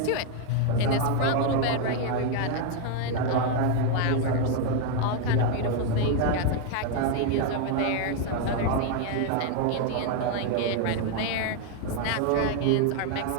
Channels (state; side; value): different; both; correlation 0.00